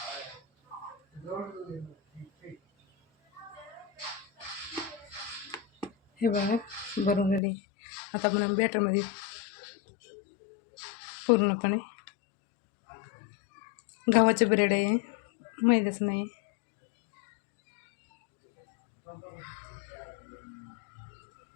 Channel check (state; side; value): drops out; right; at 7.4 s